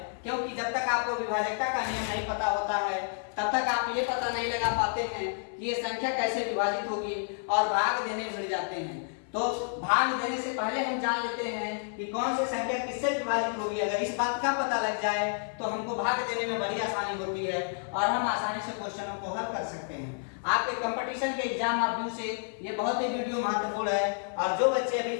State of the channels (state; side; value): silent; right; 58 dB below the other